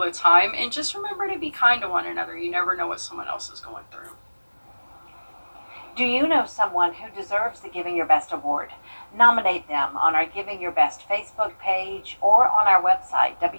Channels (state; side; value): inverted; both; correlation -1.00